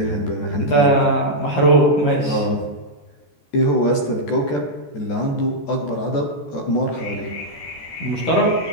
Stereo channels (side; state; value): right; late; 14 ms